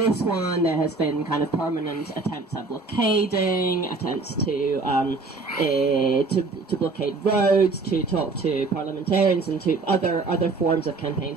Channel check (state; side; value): quieter; left; 3.8 dB